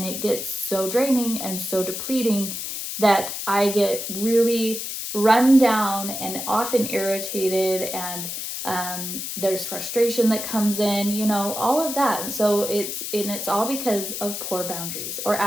it gets so draining and so depleting that I get really run down and often irritated, and there's frustration that comes in, all of that. And so it's all because of poor boundaries or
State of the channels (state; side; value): noise; left; hiss, 5 dB below the sound